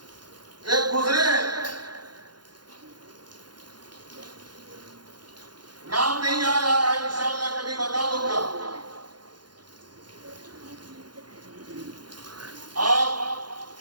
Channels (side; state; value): left; late; 0.71 ms